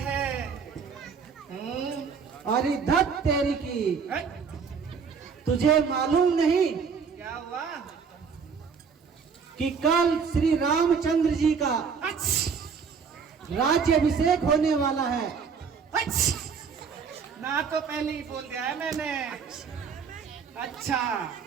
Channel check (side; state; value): left; quieter; 6.0 dB